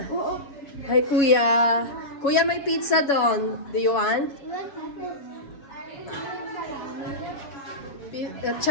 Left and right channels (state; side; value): late; right; 7.1 ms